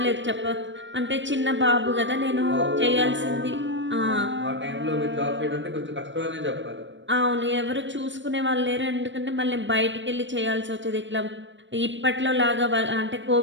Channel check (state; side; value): late; left; 0.54 ms